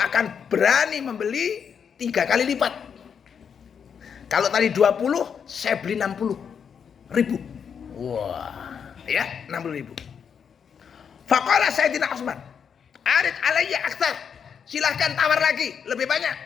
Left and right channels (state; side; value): quieter; right; 7.1 dB